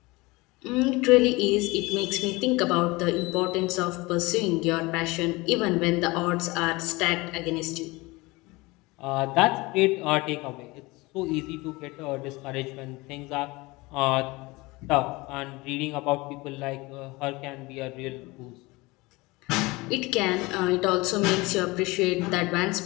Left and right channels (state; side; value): quieter; right; 22.9 dB